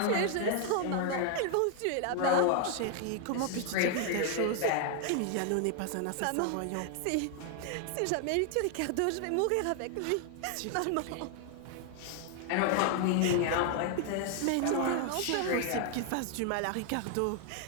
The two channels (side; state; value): both; different; correlation 0.00